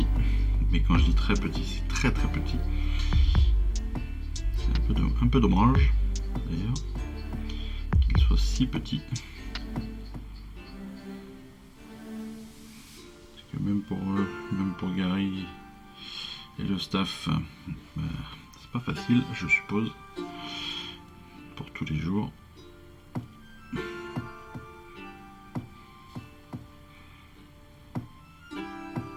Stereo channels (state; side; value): identical; both; correlation 1.00